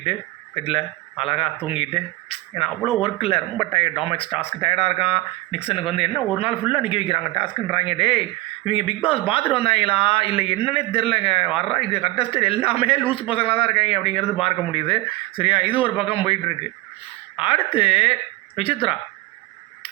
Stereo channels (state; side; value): quieter; left; 19.7 dB